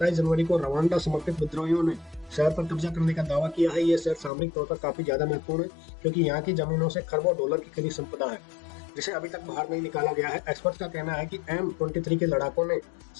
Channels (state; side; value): drops out; right; at 4.3 s